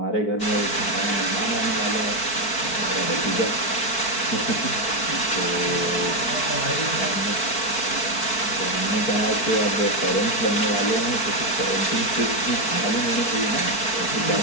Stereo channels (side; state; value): right; late; 4.5 ms